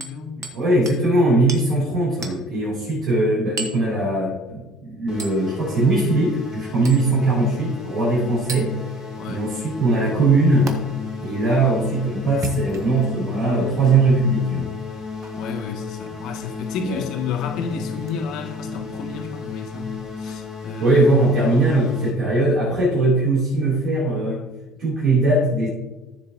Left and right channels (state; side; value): normal; both; correlation 0.49